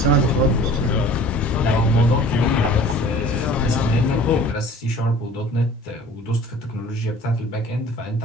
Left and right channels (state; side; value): normal; both; correlation 0.47